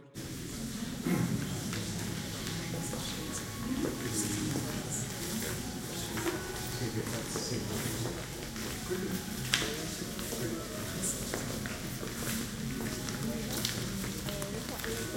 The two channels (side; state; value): both; identical; correlation 1.00